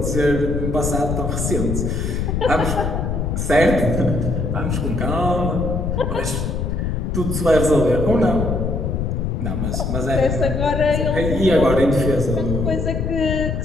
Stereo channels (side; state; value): left; noise; rumble, 1 dB below the sound